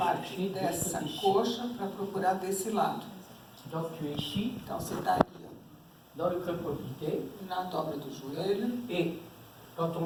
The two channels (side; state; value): both; identical; correlation 1.00